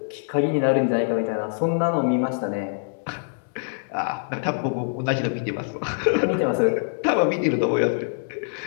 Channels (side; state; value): right; silent; digital silence